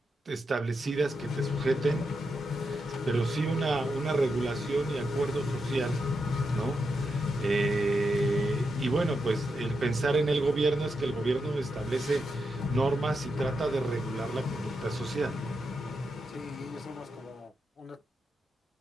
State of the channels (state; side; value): normal; both; correlation 0.85